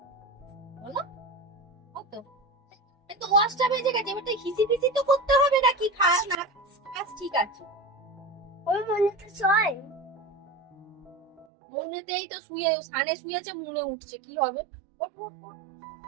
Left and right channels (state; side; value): drops out; left; at 11.5 s